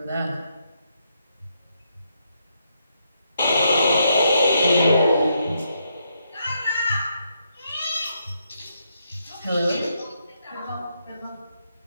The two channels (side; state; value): both; inverted; correlation -0.78